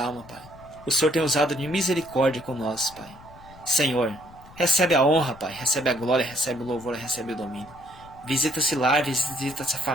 Pai. O Senhor tem usado de misericórdia com nós, Pai. Senhor, recebe a honra, Pai, recebe a glória, recebe o louvor, recebe o domínio. Visita esse lar, visita essa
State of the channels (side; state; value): left; noise; rumble, 21 dB below the sound